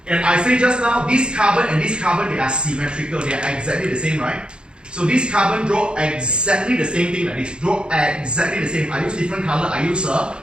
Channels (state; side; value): late; left; 0.052 ms